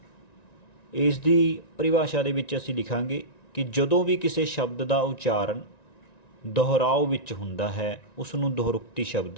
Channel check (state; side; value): late; right; 1.9 ms